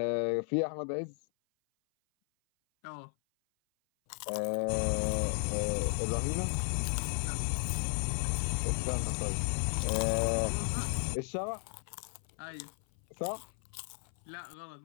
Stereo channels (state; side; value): silent; right; 55 dB below the other